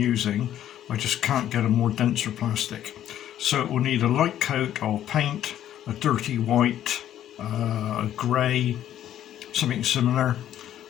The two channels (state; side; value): quieter; right; 11.4 dB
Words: I just can't get a more denser plastic. So it will need a light coat of paint, a dirty white, a grey, something similar,